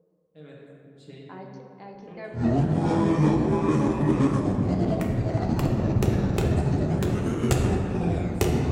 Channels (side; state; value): both; identical; correlation 1.00